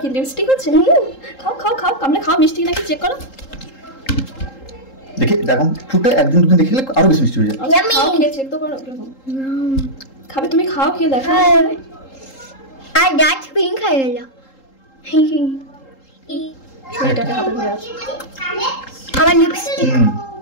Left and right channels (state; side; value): late; right; 3.8 ms